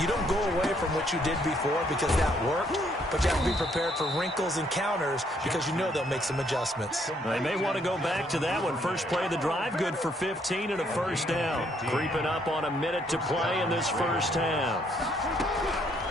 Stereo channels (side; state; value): both; normal; correlation 0.69